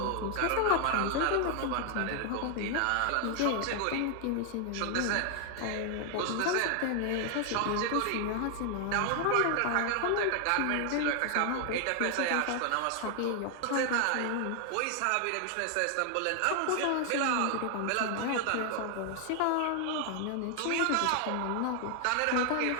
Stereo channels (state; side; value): different; both; correlation 0.00